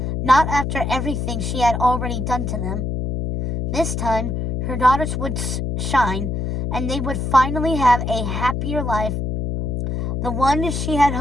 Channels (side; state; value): left; noise; hum, 2 dB below the sound